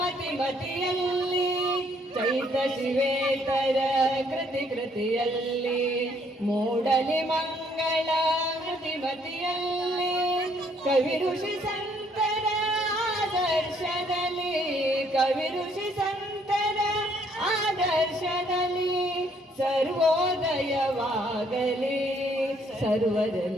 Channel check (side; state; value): both; normal; correlation 0.67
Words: ಚೈತ ಶಿವೇತರ ಕೃತಿಯಲ್ಲಿ ಮೂಡಲಿ ಮಂಗಳ ಮತಿಯಲ್ಲಿ ಕವಿ ಋಷಿ ಸಂತರ ಆದರ್ಶದಲ್ಲಿ ಕವಿ ಋಷಿ ಸಂತರ ಆದರ್ಶದಲ್ಲಿ ಸರ್ವೋದಯವಾಗಲಿ